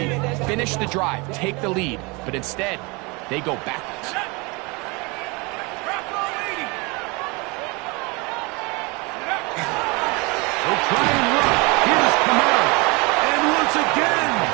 Finish the drive, take the lead, but instead, they go backwards. They try and run. Here's Kamara. And once again,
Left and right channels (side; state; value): left; quieter; 27.5 dB